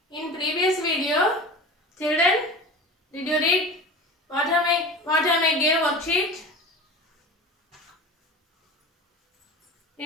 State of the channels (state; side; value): normal; both; correlation 0.34